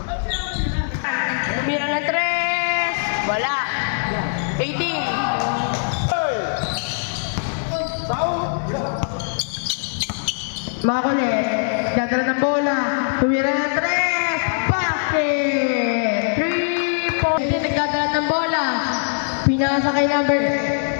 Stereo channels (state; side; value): silent; right; 59 dB below the other